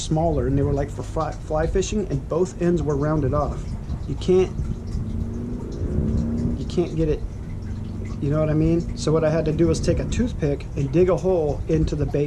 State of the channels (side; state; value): both; identical; correlation 1.00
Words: and they were like for fly fishing, and both ends were rounded off. You can't get it, you know what I mean? So what I had to do was take a toothpick and dig a hole into the